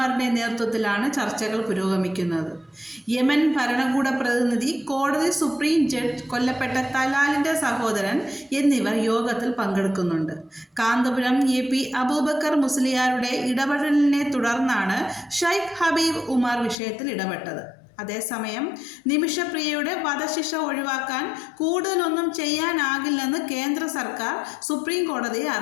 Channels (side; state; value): right; drops out; at 16.8 s